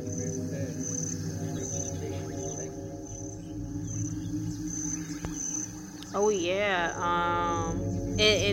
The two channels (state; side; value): identical; both; correlation 1.00